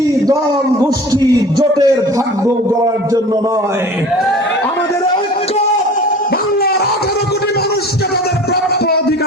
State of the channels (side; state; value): both; normal; correlation 0.41